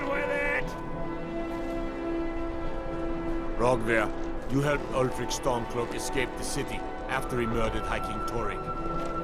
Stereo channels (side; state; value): both; identical; correlation 1.00